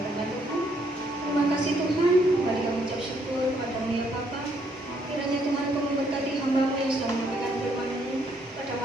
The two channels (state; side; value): normal; both; correlation 0.70